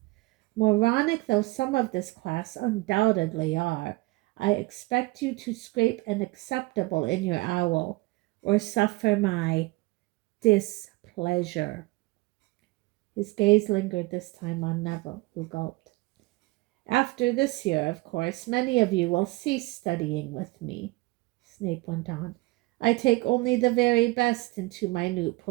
Moronic though some of this class undoubtedly are, I expect you to scrape an acceptable in your owl, or suffer my displeasure." His gaze lingered this time on Neville, who gulped. "After this year, of course, many of you will cease studying with me," Snape went on. "I take only the very best into minute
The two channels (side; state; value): left; quieter; 22.3 dB